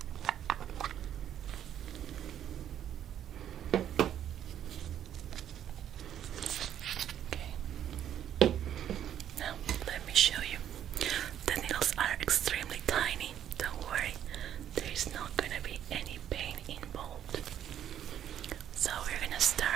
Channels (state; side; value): quieter; left; 10.3 dB